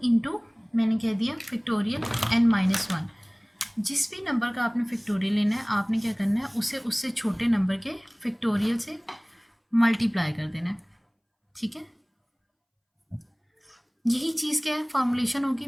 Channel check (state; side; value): identical; both; correlation 1.00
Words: इंटू मैंने कह दिया फैक्टोरियल n-1। जिस भी नंबर का आपने फैक्टोरियल लेना है, आपने क्या करना है, उसे उससे छोटे नंबर के फैक्टोरियल से मल्टीप्लाई कर देना है, ठीक है। यही चीज़ क्या है, फॉर्मुलेशन होगी।